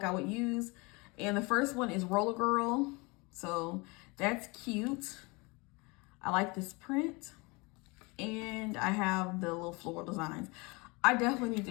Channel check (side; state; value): right; quieter; 27.1 dB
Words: I would use. And the first one is Roller Girl, so that's cute. I like this print, and I have the little floral designs. I definitely need